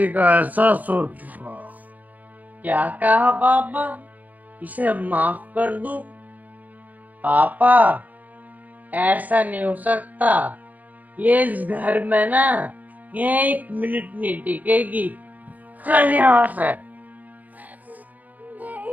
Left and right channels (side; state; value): left; late; 0.080 ms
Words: का एहसास हो चुका। क्या कहा पापा? इसे माफ कर दूं? पापा, ऐसा नहीं हो सकता। ये इस घर में ना, ये 1 मिनट नहीं टिकेगी। चल यहाँ से।